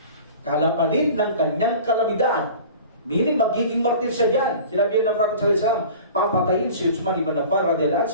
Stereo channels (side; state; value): both; inverted; correlation -0.41